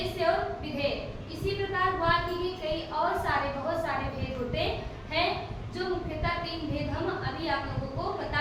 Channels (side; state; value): both; identical; correlation 1.00